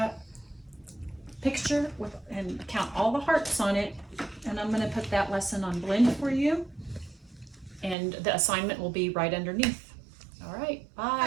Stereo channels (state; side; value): drops out; left; at 8.0 s